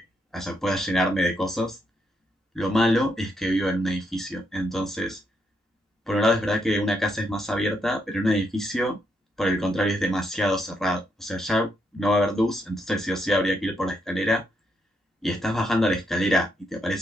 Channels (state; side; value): normal; both; correlation 0.78